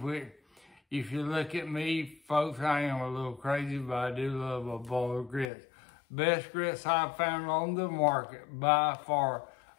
If you look at me, folks, I am a little crazy, but I do love a bowl of grits. Best grits I've found on the market by far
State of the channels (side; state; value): right; drops out; at 5.5 s